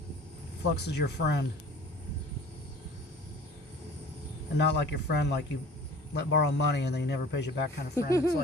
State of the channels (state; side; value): normal; both; correlation 0.46